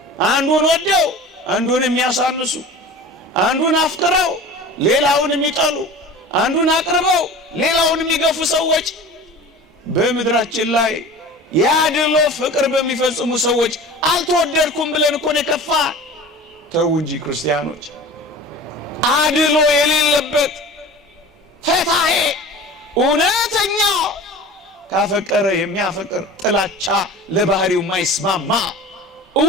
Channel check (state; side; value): normal; both; correlation 0.38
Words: አንዱን ወደው አንዱን የሚያሳንሱ፣ አንዱን አፍቅረው ሌላውን የሚጠሉ፣ አንዱን አቅርበው ሌላውን የሚገፉ ሰዎች በምድራችን ላይ ያድሎ ፍቅር በሚፈጽሙ ሰዎች አልተወደድኩም ብለን እኮ ነው የከፋ። ተው እንጂ ክርስቲያኖች፣ አድሎ የሌለበት ፈታሄ እውነተኛ ካፈቀረ የሚያፈቅር ጥላቻ ለባህሪው ማይስማማ